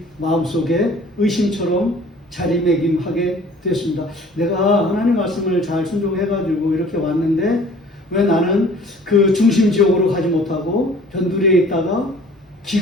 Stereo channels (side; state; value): both; normal; correlation 0.50